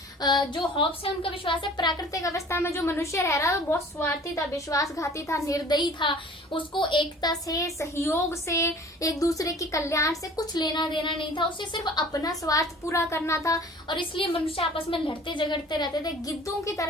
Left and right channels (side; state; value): both; normal; correlation 0.47